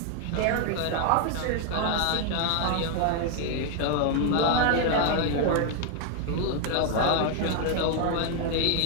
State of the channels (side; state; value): both; different; correlation 0.00